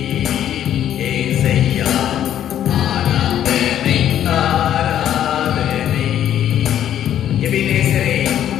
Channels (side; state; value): right; quieter; 10.8 dB